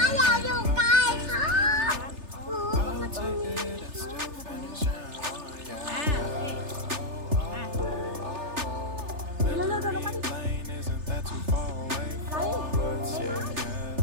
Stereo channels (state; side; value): late; left; 3.3 ms